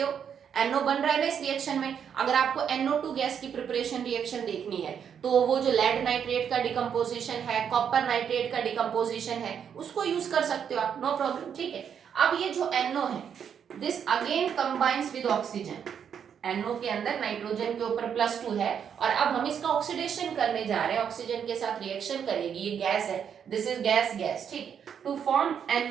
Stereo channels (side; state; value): left; quieter; 7.9 dB